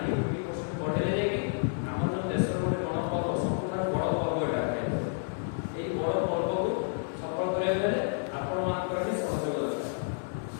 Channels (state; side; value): silent; right; digital silence